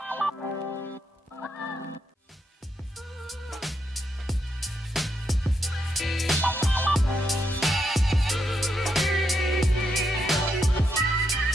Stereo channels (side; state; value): both; normal; correlation 0.80